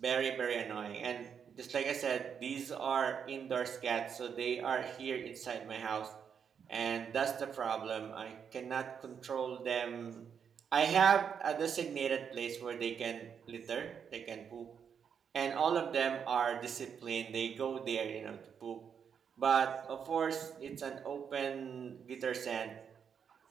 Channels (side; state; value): left; quieter; 7.3 dB